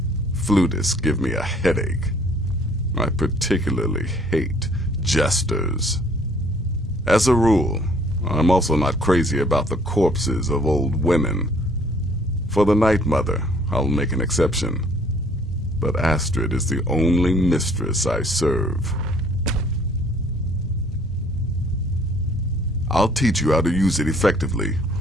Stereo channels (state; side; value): normal; both; correlation 0.59